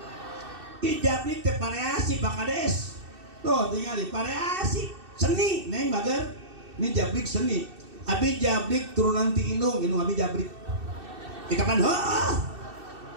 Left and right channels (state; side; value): late; left; 2.6 ms